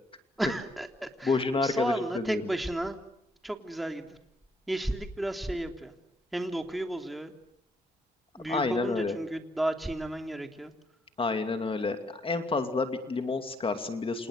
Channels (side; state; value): both; normal; correlation 0.72